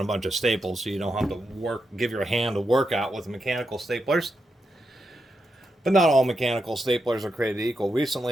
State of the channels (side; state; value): both; normal; correlation 0.85